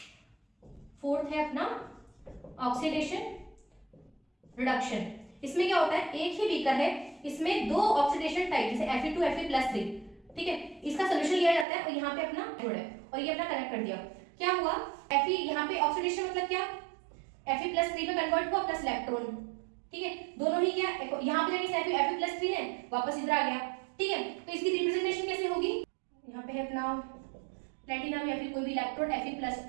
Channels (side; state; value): left; drops out; at 11.7 s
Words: फोर्थ है अपना ऑक्सीडेशन रिडक्शन। इसमें क्या होता है, एक ही बीकर है, इसमें दो ऑक्सीडेशन टाइप जैसे Fe2Fe+3, ठीक है, इसका सोल्यूशन लिया जाता है और यहाँ पे अपना जोड़ है और ये अपना कनेक्ट कर दिया। क्या हुआ, Fe यहाँ पे ऑक्सीडेशन मतलब क्या, Fe+3 में कन्वर्ट हुआ प्लस इलेक्ट्रॉन, ठीक है, दोनों ही क्या, यहाँ पे जाके Fe+3 है, वापस इधर आ गया, ठीक है। तो इसकी रिप्रेजेंटेशन कैसे होगी, यहाँ पे है अपना प्लैटिनम या फिर कोई भी इलेक्ट्रोड